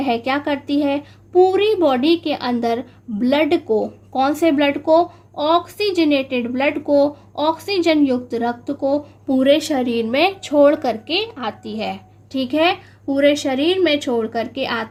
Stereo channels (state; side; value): identical; both; correlation 1.00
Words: क्या करती है? पूरी बॉडी के अंदर ब्लड को, कौन से ब्लड को, ऑक्सीजनेटेड ब्लड को, ऑक्सीजन युक्त रक्त को पूरे शरीर में छोड़ करके आती है। ठीक है, पूरे शरीर में छोड़ करके